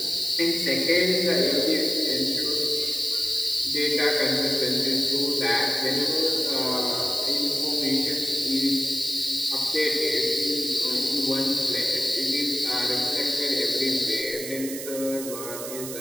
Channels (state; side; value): noise; right; hiss, 8 dB below the sound